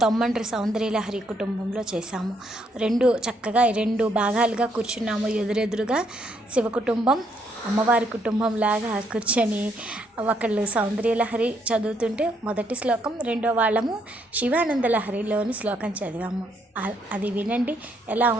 తొమ్మండ్రి సౌందర్యలహరి కుటుంబంలో చేశాము. చక్కగా రెండు భాగాలుగా కూర్చున్నాము. ఎదురెదురుగా శివ కుటుంబం, అమ్మవారి కుటుంబం లాగా కూర్చొని ఒకళ్ళు సౌందర్యలహరి చదువుతుంటే మొదటి శ్లోకం, రెండో వాళ్ళము శివానందలహరిలోని శ్లోకం చదివాము. అది వినండి ఎలా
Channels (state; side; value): normal; both; correlation 0.73